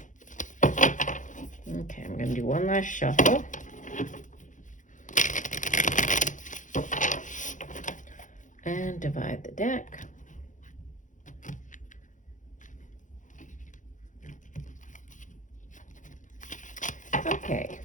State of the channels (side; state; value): right; late; 0.37 ms